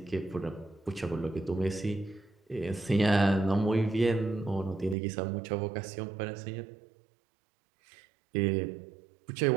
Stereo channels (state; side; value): drops out; left; at 5.0 s